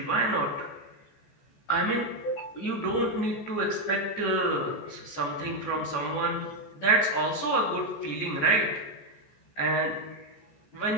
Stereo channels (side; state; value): right; late; 14 ms